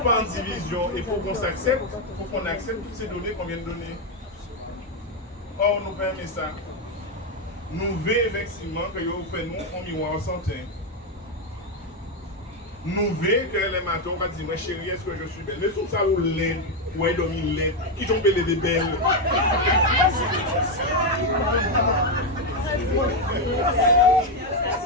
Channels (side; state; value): both; normal; correlation 0.05